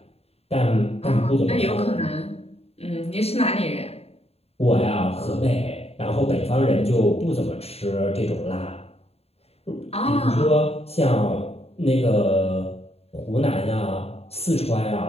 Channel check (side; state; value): right; late; 0.29 ms